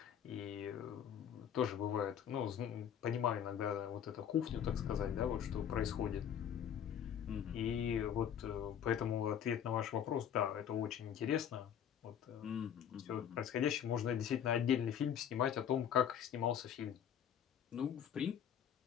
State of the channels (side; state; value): right; quieter; 9.0 dB